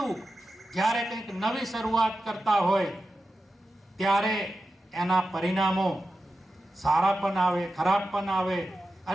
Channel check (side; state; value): both; normal; correlation 0.92